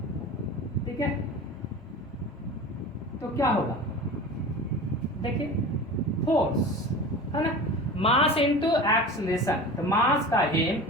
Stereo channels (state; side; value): normal; both; correlation 0.34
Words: ठीक है, तो क्या होगा, देखिए फोर्स, है ना, मास इनटू एक्सीलरेशन। तो मास का M,